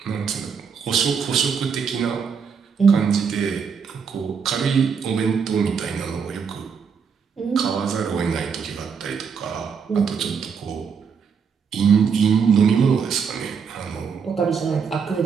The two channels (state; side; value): quieter; left; 6.3 dB